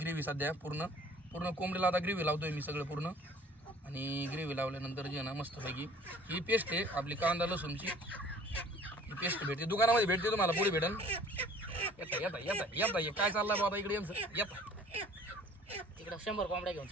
सध्या पूर्ण कोंबडीला आता ग्रेव्ही लावतोय मी सगळं पूर्ण. आणि ग्रेव्ही लावल्यानंतर जी आहे ना मस्तपैकी ही पेस्ट आहे आपली कांदा लसूणची. ही पेस्ट भेटते दुकानामध्ये भेटते तुम्हाला पुढे भेटेल. येता काय चाललंय बाबा इकडे येता तिकडे 100 कोंबड्या घेऊन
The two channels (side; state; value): both; normal; correlation 0.51